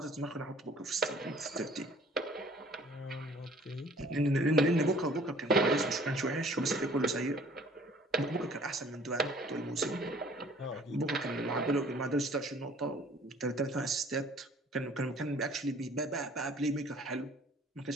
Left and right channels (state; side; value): normal; both; correlation 0.54